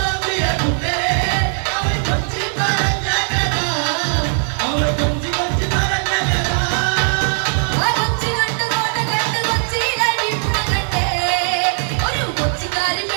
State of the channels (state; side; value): silent; left; digital silence